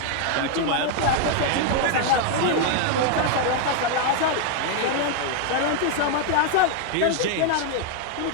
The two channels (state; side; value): different; both; correlation 0.00